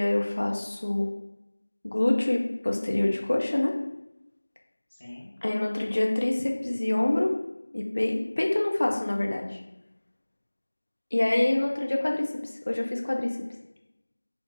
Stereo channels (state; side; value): inverted; both; correlation -1.00